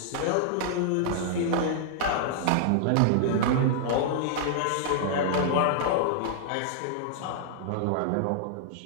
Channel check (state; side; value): different; both; correlation -0.01